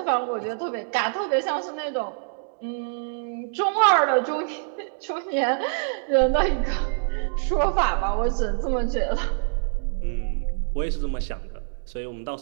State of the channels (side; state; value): left; silent; digital silence